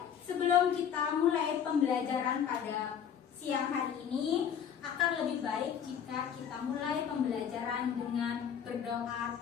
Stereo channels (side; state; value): right; quieter; 8.3 dB